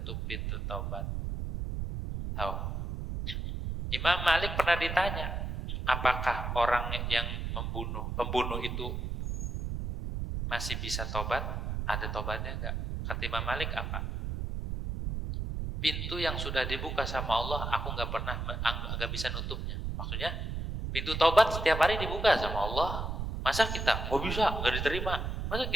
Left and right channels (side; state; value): right; noise; rumble, 3 dB below the sound